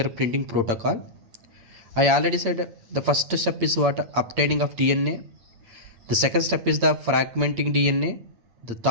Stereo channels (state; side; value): late; left; 8.7 ms